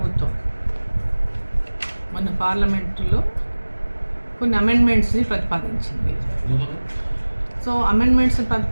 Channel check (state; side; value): inverted; both; correlation -1.00